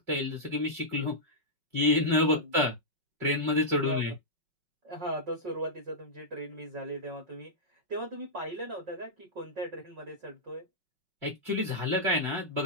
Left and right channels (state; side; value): late; left; 5.4 ms